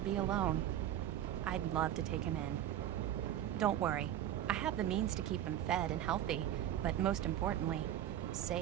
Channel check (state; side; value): quieter; left; 11.5 dB